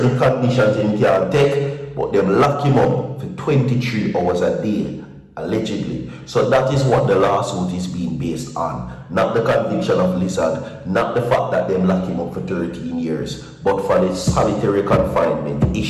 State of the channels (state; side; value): identical; both; correlation 1.00